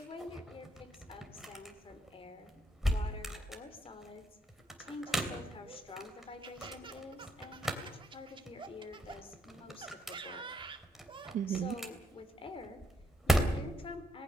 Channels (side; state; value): both; normal; correlation 0.77